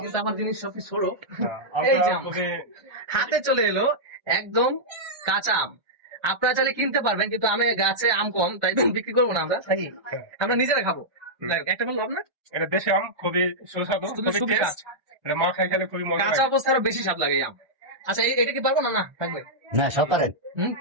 কিন্তু আমার জিনিস সবকিছু ছোট। আমটা এই যে আম খুবই হাতে চলে এলো, একদম কাঁচা আম। আপনারা চাইলে কিনতে পারবেন, কিন্তু আমি গাছে আম কম, তাই বিক্রি করবো না আমরা, তাই আমরা নিজেরা খাবো। যাই হোক, একটা বলবো আপনার, এটা দেশি আম, খুবই সুস্বাদু, খুবই খুবই কাঁচা। টেস্ট। এটা মা খাই খেলে খুবই মজা কাঁচা লাগে। অবস্থা আরো বেশি স্বাদ লাগে এই আম। আচ্ছা, এটা কি পারবো না? না, থাকবে। না সব পারেন।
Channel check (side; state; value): left; late; 1.2 ms